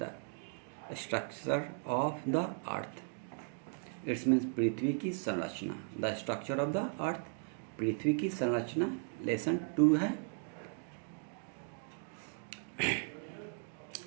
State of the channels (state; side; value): silent; left; 53 dB below the other